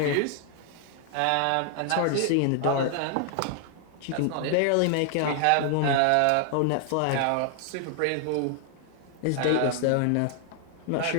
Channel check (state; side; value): different; both; correlation 0.00